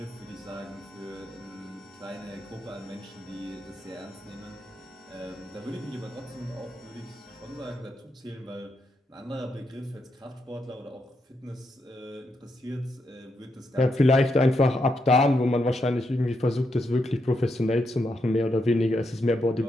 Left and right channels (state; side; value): normal; both; correlation 0.81